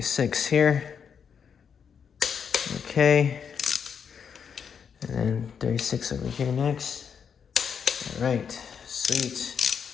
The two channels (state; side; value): quieter; right; 7.1 dB